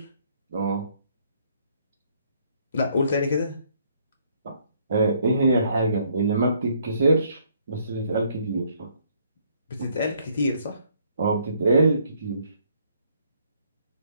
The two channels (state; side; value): inverted; both; correlation -0.67